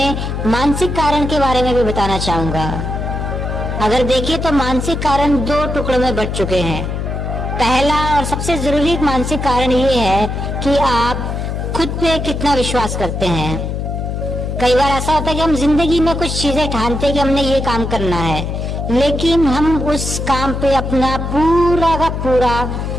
मानसिक कारण के बारे में भी बताना चाहूंगा। अगर देखिए तो मानसिक कारण 2 टुकड़ों में बंट चुके हैं। पहला और सबसे जरूरी मानसिक कारण ये है कि आप खुद पे कितना विश्वास करते हैं। कई बार ऐसा होता है कि हम जिंदगी में कुछ चीजें ठानते हैं कि हमने ये काम करना है, लेकिन हम उस काम पे अपना पूरा का पूरा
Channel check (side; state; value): left; noise; hum, 3 dB below the sound